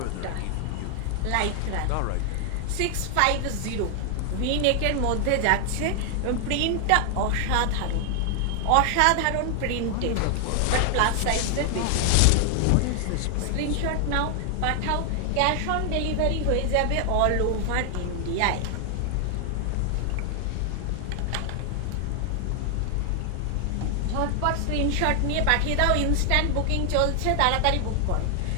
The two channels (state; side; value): different; both; correlation 0.00